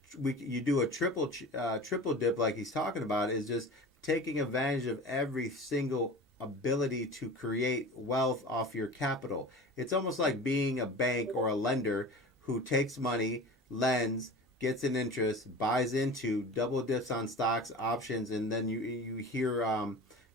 you do a triple dip like he's talking about, is just taking advantage of every single ability to create wealth off your capital. It's almost like being a bank or a lender who takes money, lends, gets an interest, buys into, double dips on stocks, options, and then you hear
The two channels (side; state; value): both; normal; correlation 0.36